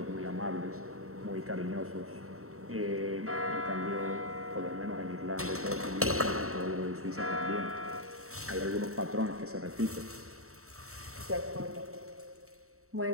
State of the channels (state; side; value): late; left; 0.64 ms